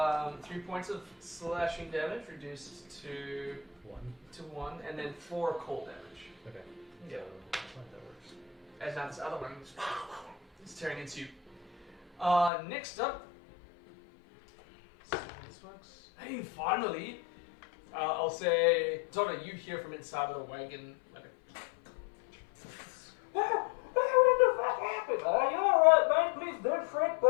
3 points of slashing damage, reduced to 1. 1, and then 4 cold damage. Okay. Yeah. So, I think that works. As now this other one is tearing into you. Next up. See how this works. Hey, finally! I'll say, Donna, you hear from inside of the wagon, like a... What the fuck happened? You alright, man? Please don't fret,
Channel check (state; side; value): drops out; right; at 12.5 s